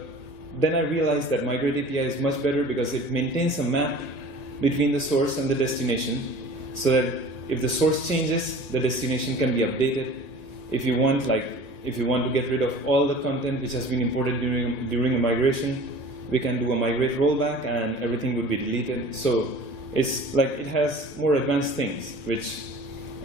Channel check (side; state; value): right; late; 1.8 ms